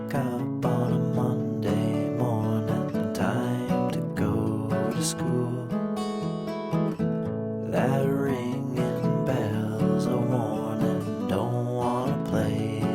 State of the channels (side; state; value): both; identical; correlation 1.00